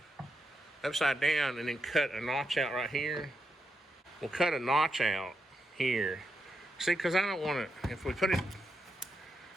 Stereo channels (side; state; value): both; normal; correlation 0.84